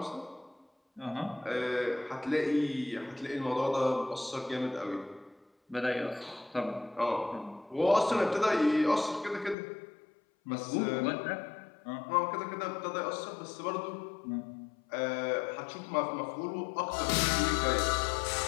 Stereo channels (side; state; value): right; drops out; at 9.6 s